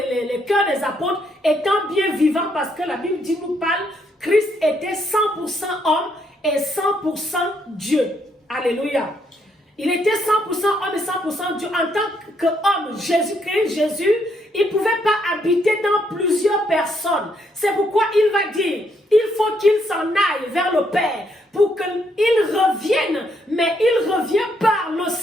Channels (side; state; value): both; normal; correlation 0.74